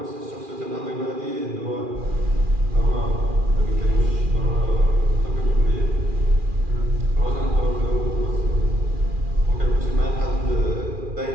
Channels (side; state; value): left; late; 2.4 ms